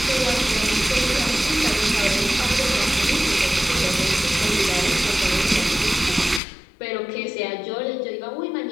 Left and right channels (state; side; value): drops out; right; at 6.4 s